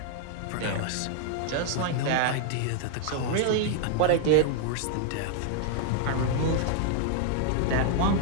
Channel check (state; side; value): different; both; correlation -0.01